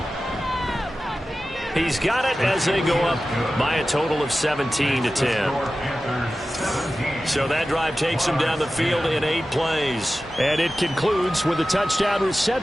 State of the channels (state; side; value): normal; both; correlation 0.94